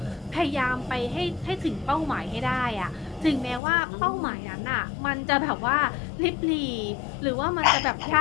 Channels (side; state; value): right; drops out; at 3.6 s